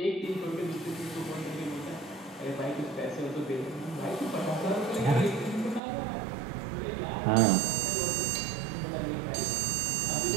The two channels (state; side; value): drops out; left; at 5.8 s